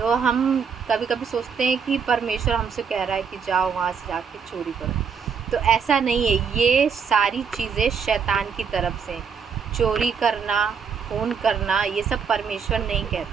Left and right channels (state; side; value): quieter; left; 6.4 dB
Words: हम कभी कभी सोचते हैं कि परमेश्वर हमसे कह रहा है कि जाओ वहाँ से जाके चोरी करो। तो ऐसा नहीं है, ये सारी चीज़ें शैतान की तरफ से। चोरी करना, खून करना, ये सब परमेश्वर नहीं